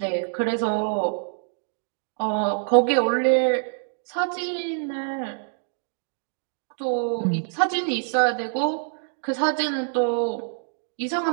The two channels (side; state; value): left; silent; digital silence